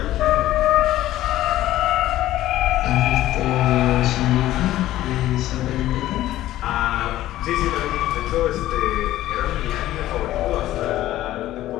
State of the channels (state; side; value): quieter; right; 14.5 dB